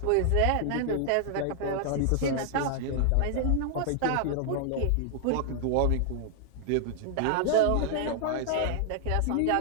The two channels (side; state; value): both; different; correlation 0.00